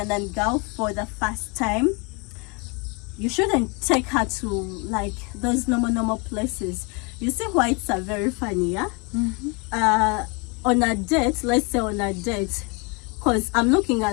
girl for the first time, you shouldn't take her to like those normal places. You see why it's very funny, yeah? On a date, let's say on a date, because I'm looking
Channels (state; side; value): quieter; right; 31.1 dB